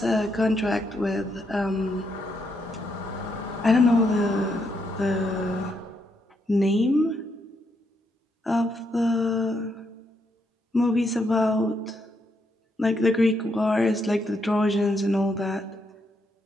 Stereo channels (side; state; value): both; normal; correlation 0.78